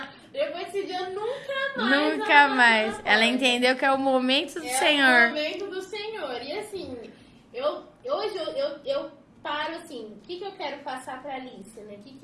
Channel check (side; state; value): both; identical; correlation 1.00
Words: Depois desse dia, nunca mais. Ela entendeu que é o momento do Senhor. É o momento do Senhor. E assim, hoje eu paro assim, o que eu quero passar pra Alicia, né?